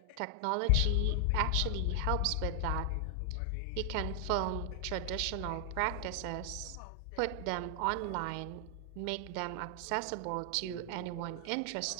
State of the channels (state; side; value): different; both; correlation 0.00